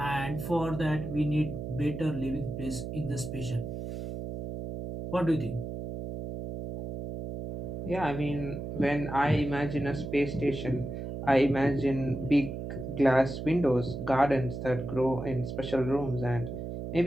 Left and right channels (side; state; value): right; noise; hum, 6 dB below the sound